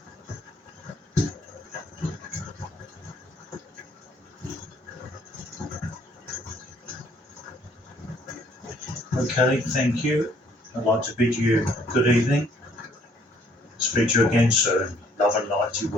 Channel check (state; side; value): normal; both; correlation 0.63